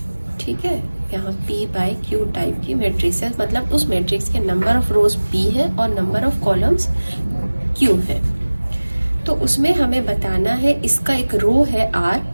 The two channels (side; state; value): both; inverted; correlation -1.00